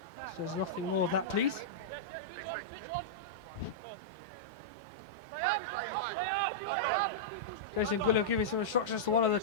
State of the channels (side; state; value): both; normal; correlation -0.10